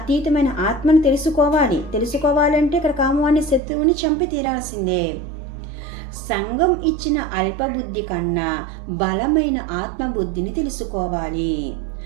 ఆత్మను తెలుసుకోవాలంటే ఇక్కడ కామం అనే శత్రువుని చంపి తీరాల్సిందే. సంఘం ఇచ్చిన అల్పబుద్ధి కన్నా బలమైన ఆత్మబుద్ధిని తెలుసుకోవాలి.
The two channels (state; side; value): drops out; left; at 3.6 s